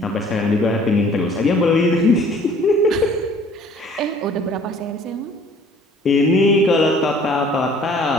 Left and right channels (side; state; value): both; normal; correlation 0.54